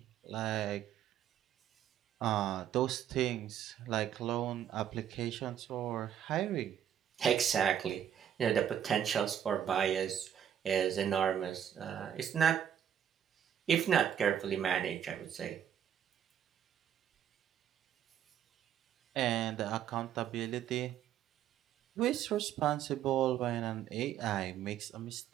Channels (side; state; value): left; quieter; 9.5 dB